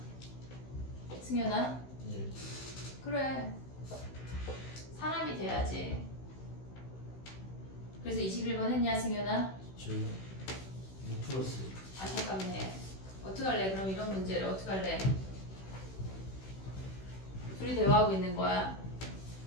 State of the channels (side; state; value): right; late; 16 ms